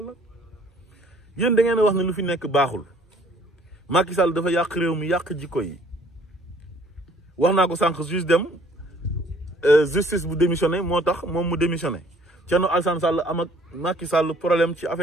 yéen da ngeen a wax ne lu fi nekk baaxul Macky Sall dafa yàq réew mi yàq jikko yi wax naa ko sànq juste dem justice bu démissionné moo tax moom mu démissionné Thierno Alassane Sall am ak Macky Sall problème ci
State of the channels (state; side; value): normal; both; correlation 0.58